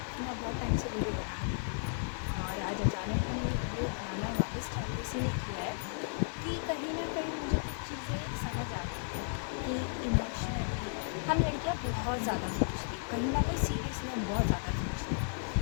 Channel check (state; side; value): silent; right; digital silence